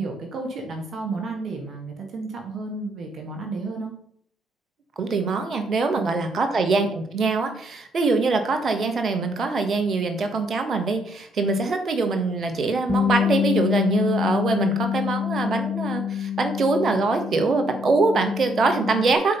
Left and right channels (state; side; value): normal; both; correlation 0.71